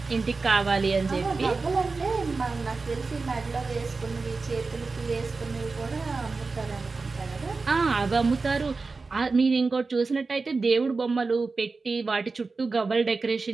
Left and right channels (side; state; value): left; quieter; 4.0 dB